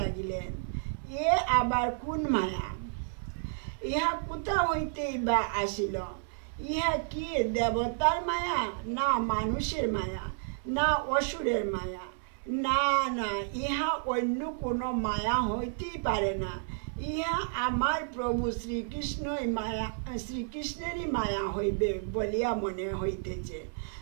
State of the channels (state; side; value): silent; left; 57 dB below the other